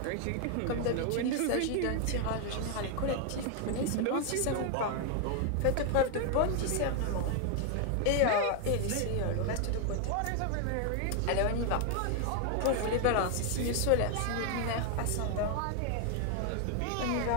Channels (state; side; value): different; both; correlation 0.00